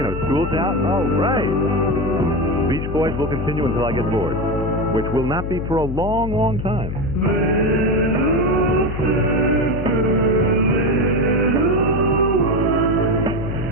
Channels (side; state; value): left; noise; hum, 5 dB below the sound